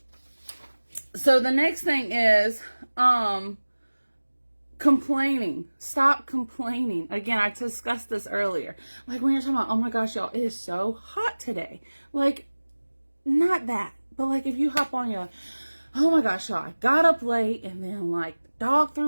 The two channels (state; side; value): inverted; both; correlation -1.00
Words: So the next thing is complaining. Stop complaining. Again, I discussed this earlier. Like when you're talking about, oh my gosh, y'all, it is so hot today. Like, not that. But like if you hop on your, oh my gosh, y'all, I got up late and then like dog